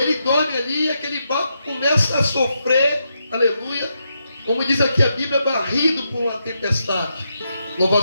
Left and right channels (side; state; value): both; inverted; correlation -0.83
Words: dorme ali e aquele barco começa a sofrer, aleluia, como diz aqui a Bíblia, barrido por uma tempestade.